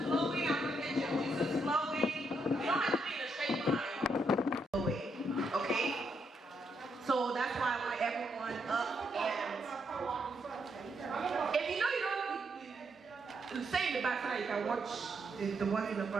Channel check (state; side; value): normal; both; correlation 0.78